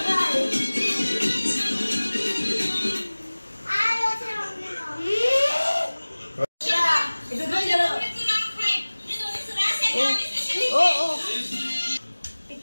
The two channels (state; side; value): inverted; both; correlation -1.00